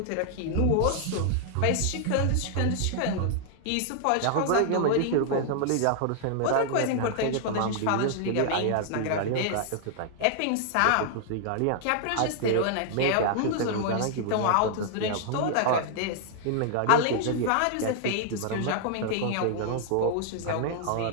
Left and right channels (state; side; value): different; both; correlation -0.01